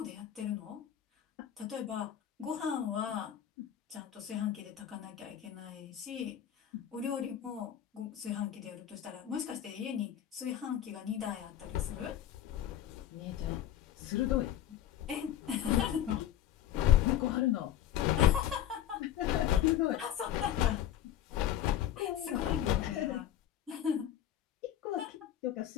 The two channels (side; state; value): right; quieter; 11.1 dB